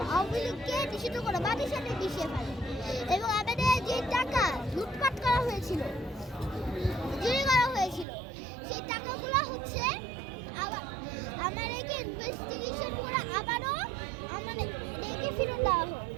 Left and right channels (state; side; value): drops out; left; at 8.1 s